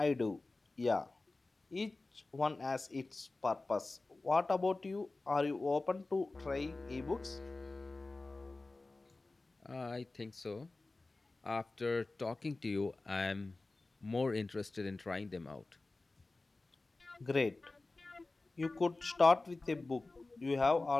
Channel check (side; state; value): right; quieter; 3.3 dB